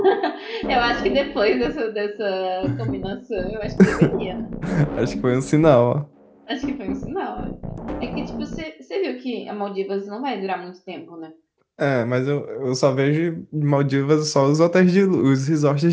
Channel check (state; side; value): identical; both; correlation 1.00